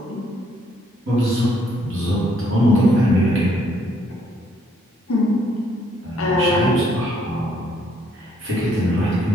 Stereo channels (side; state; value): both; normal; correlation 0.68